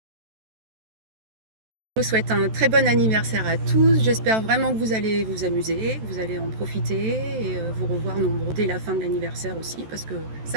Je vous souhaite un très bon anniversaire à tous. J'espère vraiment que vous allez vous amuser, que vous allez en profiter et vous revoir nombreux dès la fin de l'anniversaire aussi, parce que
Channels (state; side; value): late; left; 14 ms